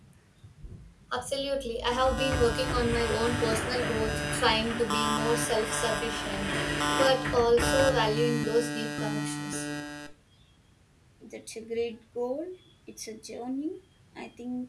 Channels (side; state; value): both; identical; correlation 1.00